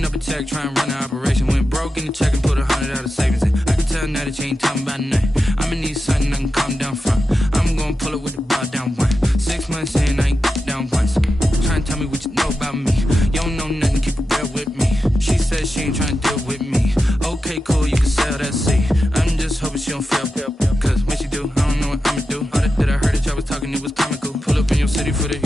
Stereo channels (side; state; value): both; normal; correlation 0.90